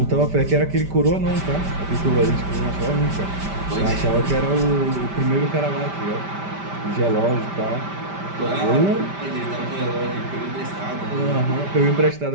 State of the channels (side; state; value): left; late; 5.1 ms